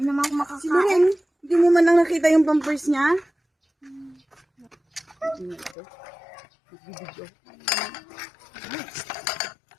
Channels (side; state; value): right; drops out; at 5.8 s